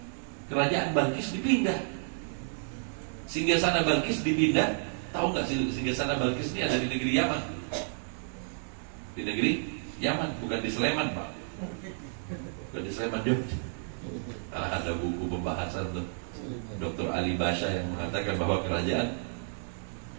Kerajaan Balkis dipindah. Singgasana Balkis dipindah. Tahu nggak singgasana Balkis ini ada di negeri Yaman? Di negeri Yaman, bukan di Sleman, Pak. Bukan di Sleman, Jogja. Ada buku pembahasan tuh. Dr. Ali Basha yang mengatakan bahwa kerajaan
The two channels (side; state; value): left; silent; digital silence